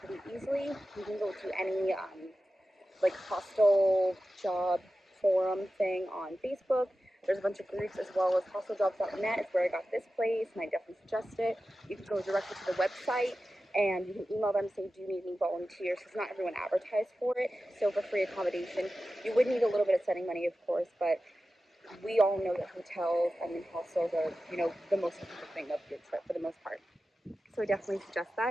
easily. You can go to any like hostel job forum thing on Facebook. There's a bunch of groups as well as hosteljobs.net is where I got this place, and I definitely suggest it. You can go directly to the website and you can email them saying, do you need any volunteers? Because not everyone advertised for it. So for free accommodation, you would need a little bit of setting money, of course, but we all know that hotels and hostels are, you know, the most important thing of your trip for the most part. So I definitely suggest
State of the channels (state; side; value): normal; both; correlation 0.94